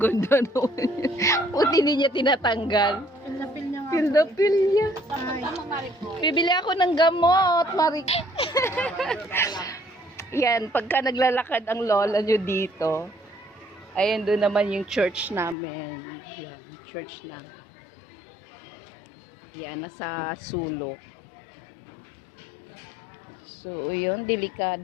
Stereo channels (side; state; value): right; drops out; at 15.6 s